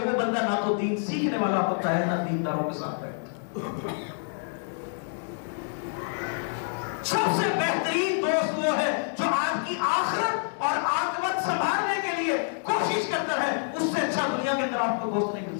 بندہ نہ تو دین سیکھنے والا ہوتا ہے، نہ دینداروں کے ساتھ رہتا ہے. سب سے بہترین دوست وہ ہے جو آپ کی آخرت اور عاقبت سنبھالنے کے لیے کوشش کرتا ہے. اس سے اچھا دنیا کے اندر آپ کو دوست نہیں مل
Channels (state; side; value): silent; right; digital silence